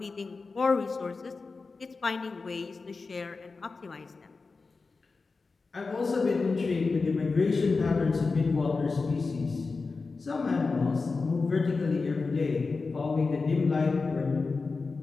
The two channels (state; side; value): quieter; right; 4.2 dB